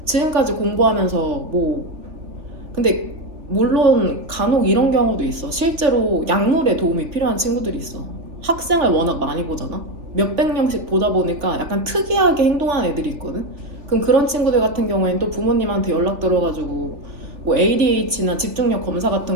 지금까지 공부하면서 뭐 근데 물론 간혹 이런 경우도 있어. 실제로 약물에 도움이 필요한 친구들이 있어. 학생을 워낙 많이 보잖아. 몇백 명씩 보다 보니까 약간 특이하게 행동하는 애들이 있거든. 그럼 그런 친구들 같은 경우에는 또 부모님한테 연락 들어가지고 뭐 ADH나 집중력 검사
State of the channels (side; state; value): left; late; 3.4 ms